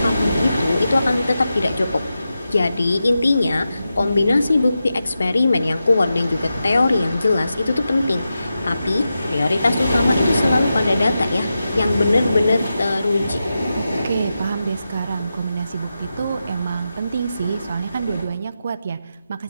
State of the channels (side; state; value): both; inverted; correlation -0.90